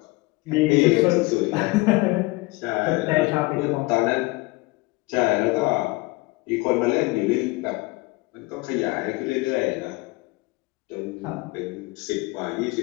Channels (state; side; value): quieter; right; 23.1 dB